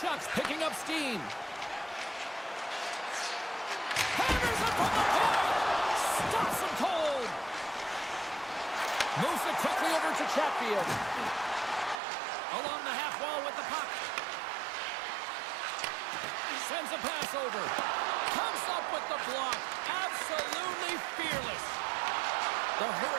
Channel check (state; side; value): drops out; left; at 12.0 s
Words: picking up steam. Hammers it from the point. Stops him cold. Moves it quickly over to Chatfield. Along the half wall with the puck. Sends a pass over. Comes up with the block. Absolutely fearless. The